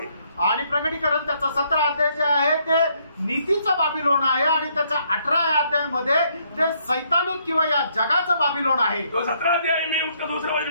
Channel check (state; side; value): inverted; both; correlation -0.71